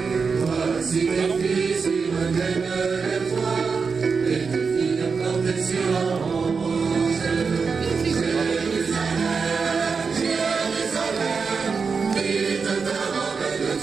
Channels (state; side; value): quieter; left; 5.2 dB